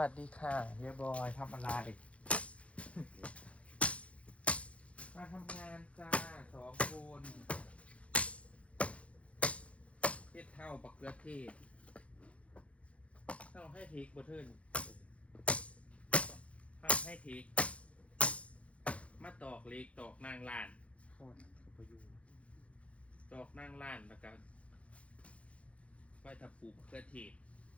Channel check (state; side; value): late; right; 0.063 ms